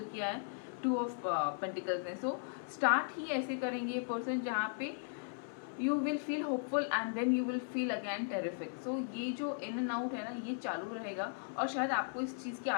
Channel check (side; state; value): right; silent; 53 dB below the other